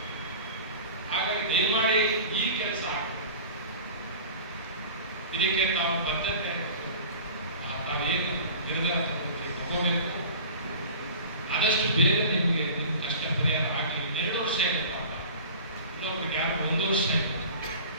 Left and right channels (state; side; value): inverted; both; correlation -0.40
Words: ಹಾಗಾಗಿ ದಯಮಾಡಿ ಈ ಕೆಲಸ ಇದಕ್ಕೆ ತಾವು ಬದ್ಧತೆ ತಾವೇನು ನಿರ್ಧಾರ ತಗೋಬೇಕು, ಆದಷ್ಟು ಬೇಗ ನಿಮಗೆ ಕಷ್ಟ ಪರಿಹಾರ ಹಾಕಿ. 2 ವರ್ಷ ಇಲ್ಲ ಪಾಪ, ಇನ್ನೊಬ್ರಿಗೆ ಯಾರು 1 ವರ್ಷ ಇಲ್ಲ,